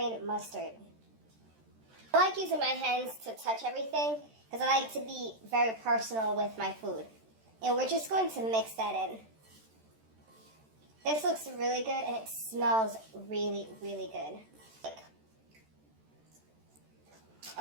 mustard. I like using my hands to touch everything because I like to be very personal with my food. And we're just going to mix that in. This looks really good and it smells really, really good.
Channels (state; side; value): late; left; 13 ms